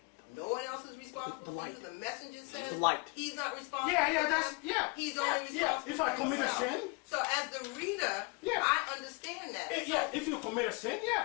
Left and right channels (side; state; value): right; quieter; 30.7 dB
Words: No one else is responsible for you. The messenger says light. he's not responsible. Yeah, for that's them. yeah. He's yeah, only yeah. responsible If I for commit a himself. sin, So as the reader, Yeah. I understand that. yeah. If you commit a sin,